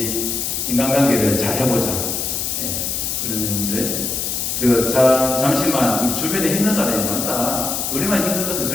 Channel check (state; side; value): noise; left; hiss, 2 dB below the sound